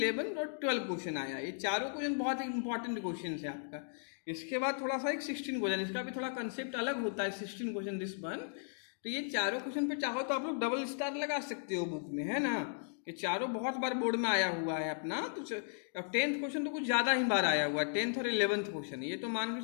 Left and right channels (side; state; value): right; silent; digital silence